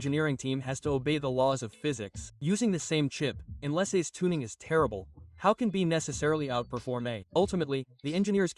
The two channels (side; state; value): both; identical; correlation 1.00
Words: team has to obey the laws of physics. Using the same chip, unless A's tuning is terrible, how can B necessarily outperform A? Ultimately, the engineers